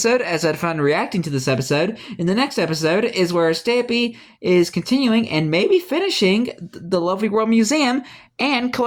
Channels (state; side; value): identical; both; correlation 1.00